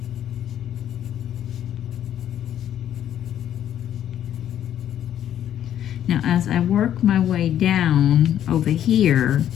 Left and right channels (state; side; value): quieter; right; 10.7 dB